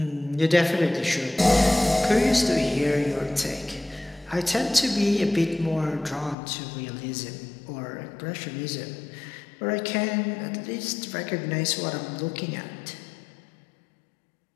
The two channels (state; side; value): drops out; right; at 6.4 s